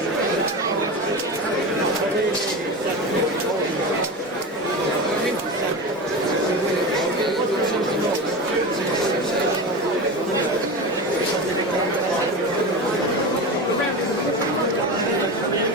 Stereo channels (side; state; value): both; normal; correlation 0.25